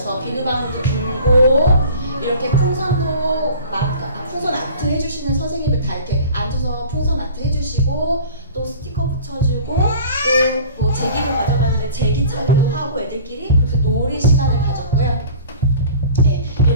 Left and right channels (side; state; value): both; inverted; correlation -0.43